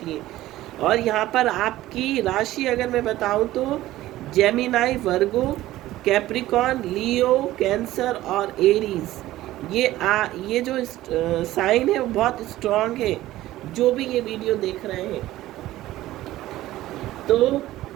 हैं। और यहाँ पर आपकी राशि अगर मैं बताऊं तो जेमिनाई, वर्गो, कैप्रिकॉर्न, लियो, कैंसर और एरीज, ये जो साइन है वो बहुत स्ट्रांग है, जो भी ये वीडियो देख रहे हैं। तो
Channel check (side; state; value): left; quieter; 15.5 dB